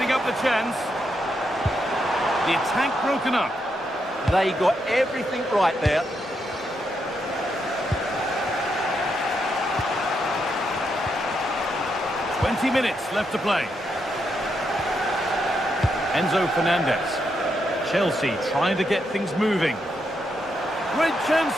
up the chance. The attack broken up. They got everything right there. "20 minutes left to play. Enzo Fernandez. Chelsea trying to get things moving. Great chance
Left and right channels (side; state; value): both; normal; correlation 0.81